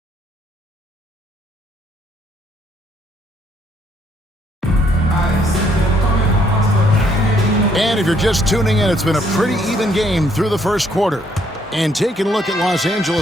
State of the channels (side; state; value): both; normal; correlation 0.68